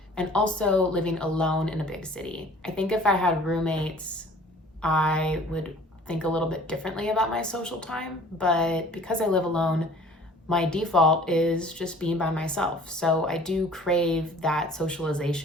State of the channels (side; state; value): both; normal; correlation 0.50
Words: and also living alone in a big city. I think if I had roommates, I would think a little bit differently about my social time, but because I live alone, my default is just being by myself. So I do crave that